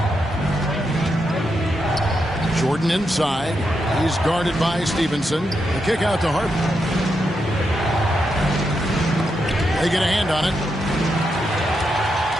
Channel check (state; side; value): normal; both; correlation 0.84